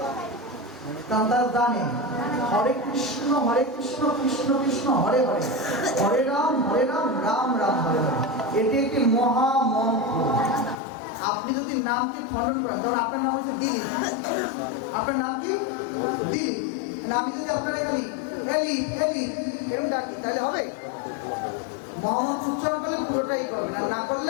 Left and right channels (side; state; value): right; drops out; at 10.8 s